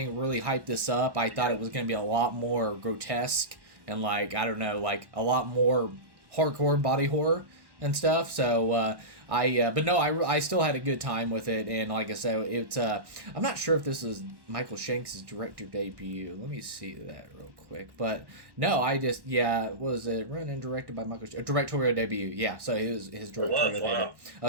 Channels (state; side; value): late; left; 1.1 ms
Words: really hyped this up, I thought it was going to be a lot more grotesque and like, I don't know, like a lot more hardcore body horror and stuff. So but no, I still had a good time with it, and like I said, it's I'm not sure if this is Michael Shanks' director debut. Let me see that real quick. But no, was it run and directed by Michael Shanks? Directorial debut? Yeah, so it was his directorial debut.